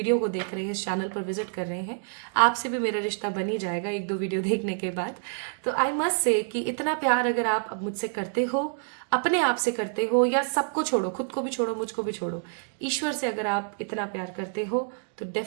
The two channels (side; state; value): left; silent; digital silence